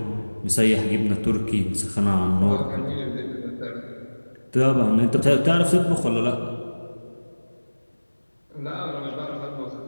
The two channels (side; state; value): both; inverted; correlation -1.00